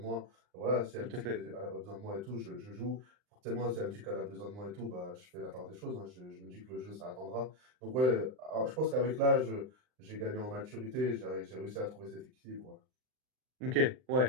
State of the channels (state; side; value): late; left; 39 ms